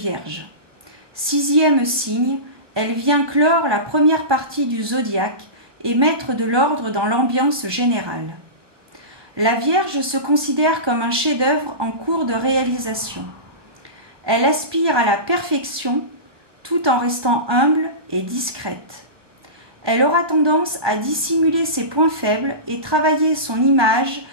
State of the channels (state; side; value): late; left; 1.1 ms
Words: 6e signe, elle vient clore la première partie du zodiaque et mettre de l'ordre dans l'ambiance générale. La Vierge se considère comme un chef-d'œuvre en cours de réalisation. Elle aspire à la perfection tout en restant humble et discrète. Elle aura tendance à dissimuler ses points faibles et travailler son image